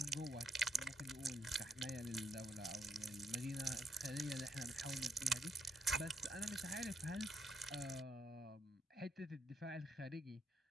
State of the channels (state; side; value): normal; both; correlation 0.77